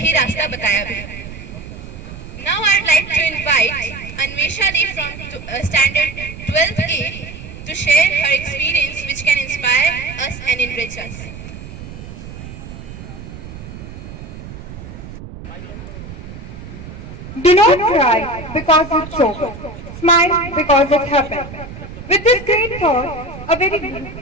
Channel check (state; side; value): noise; right; rumble, 12 dB below the sound